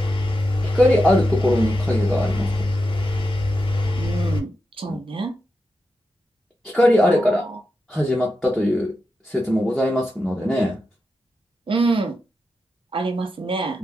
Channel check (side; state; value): both; normal; correlation 0.88